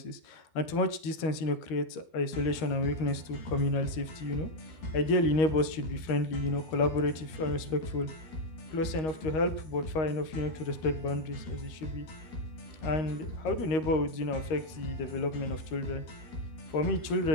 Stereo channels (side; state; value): right; late; 13 ms